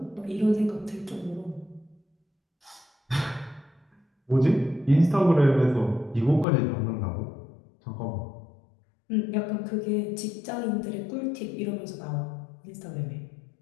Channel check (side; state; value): right; drops out; at 6.5 s